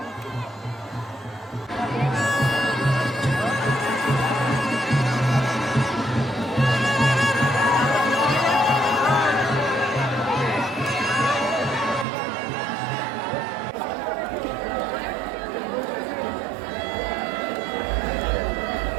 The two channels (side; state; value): left; drops out; at 12.1 s